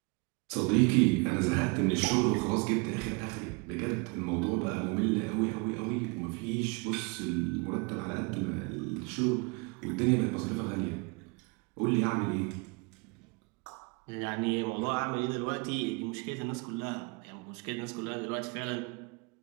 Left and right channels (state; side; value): quieter; left; 30.5 dB